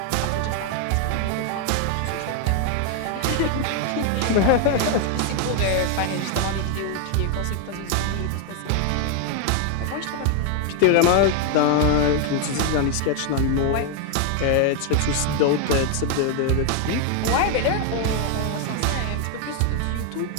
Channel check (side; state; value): both; different; correlation 0.01